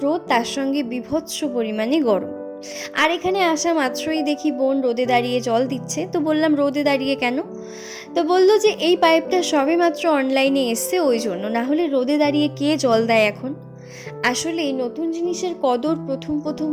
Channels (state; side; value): identical; both; correlation 1.00